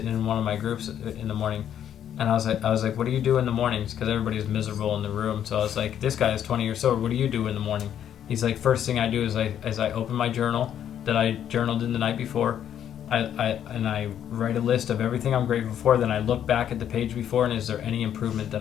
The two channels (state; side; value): quieter; right; 9.9 dB